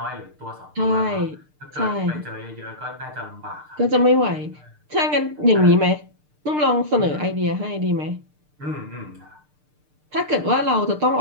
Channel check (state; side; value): late; left; 6.6 ms